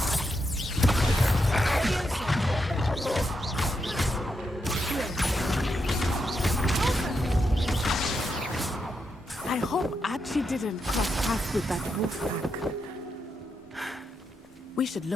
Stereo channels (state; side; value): normal; both; correlation 0.83